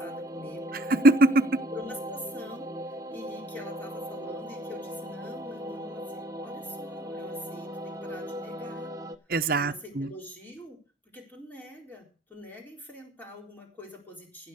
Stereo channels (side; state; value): both; normal; correlation 0.56